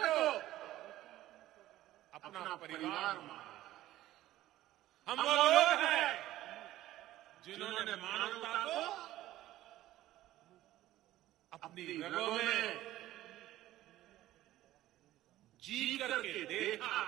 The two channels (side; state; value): left; quieter; 14.9 dB